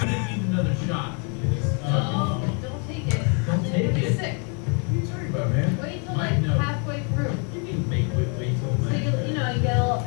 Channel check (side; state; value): right; quieter; 37.7 dB